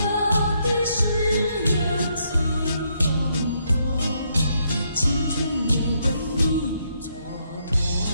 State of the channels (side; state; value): both; inverted; correlation -0.75